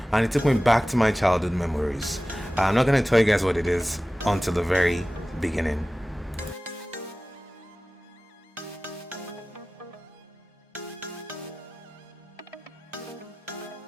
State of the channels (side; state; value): both; normal; correlation 0.96